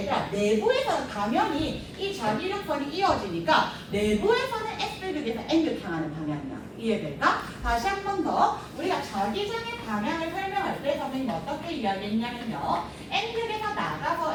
얘들아 내부에서는 당연히 이 자기력선이 이어지니까 내부에서는 S극에서 N극 향하는 방향이야. 이해될까? 다시 한 번 더 우리가 자기장의 방향을 설명할 때 선생님 어떻게 이야기했냐면요 N극에서 나가서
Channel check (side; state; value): both; identical; correlation 1.00